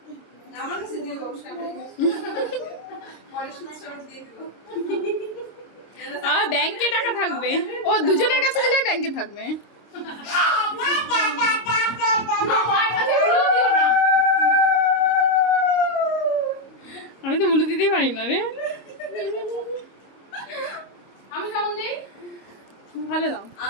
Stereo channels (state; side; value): late; right; 26 ms